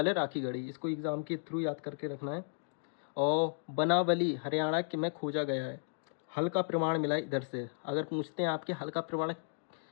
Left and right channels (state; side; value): silent; right; digital silence